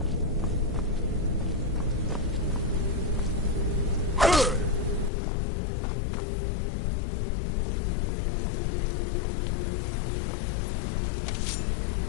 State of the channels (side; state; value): right; drops out; at 5.1 s